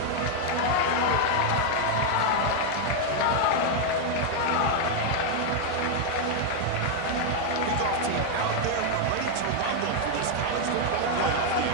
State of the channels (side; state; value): both; different; correlation 0.01